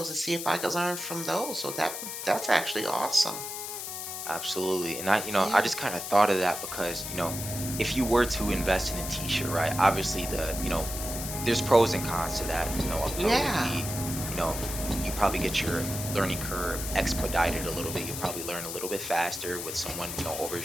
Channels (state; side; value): noise; left; hiss, 6 dB below the sound